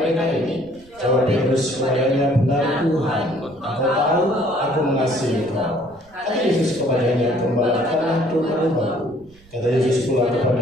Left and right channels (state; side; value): noise; right; rumble, 27 dB below the sound